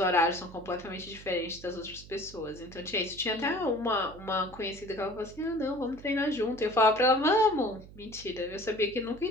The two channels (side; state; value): right; noise; hum, 18 dB below the sound